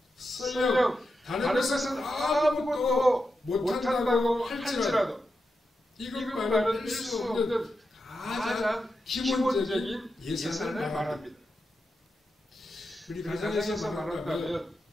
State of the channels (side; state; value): both; normal; correlation 0.88